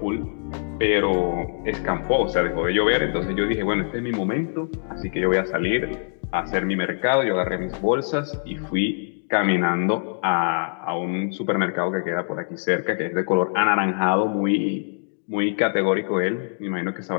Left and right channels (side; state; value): right; silent; digital silence